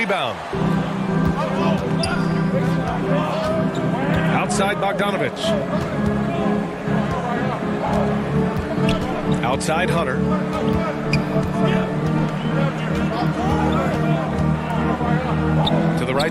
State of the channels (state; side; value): identical; both; correlation 1.00